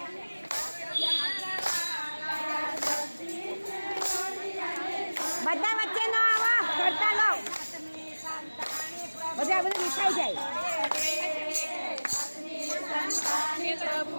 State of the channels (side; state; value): both; inverted; correlation -1.00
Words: બધા વચ્ચે ન આવો કરતા લો બધા બધું વિખાઈ જાય